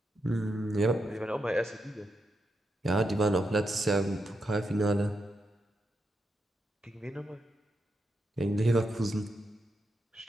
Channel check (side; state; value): both; normal; correlation 0.84